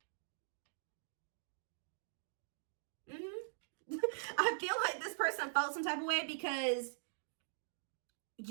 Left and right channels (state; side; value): silent; left; digital silence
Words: I feel like this person felt some type of way because